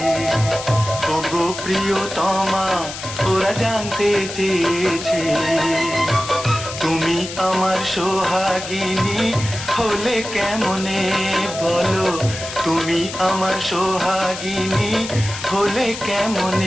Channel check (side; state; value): left; noise; hiss, 9 dB below the sound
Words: ওগো প্রিয়তমা ওরা জানতে চেয়েছে, তুমি আমার সোহাগিনী হলে কেমনে বলো, তুমি আমার সোহাগিনী হলে